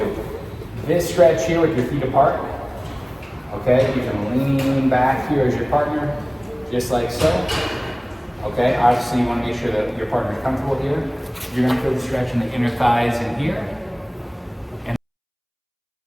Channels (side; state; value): both; identical; correlation 1.00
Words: This stretch here with your feet apart. Okay, you can lean back here as your partner, just like so. Okay, obviously you want to make sure that your partner is comfortable here. You're going to feel the stretch in the inner thighs in here.